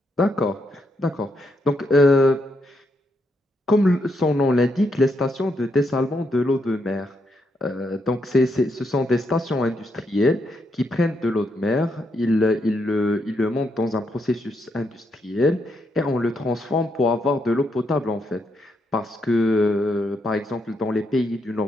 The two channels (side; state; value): both; normal; correlation 0.79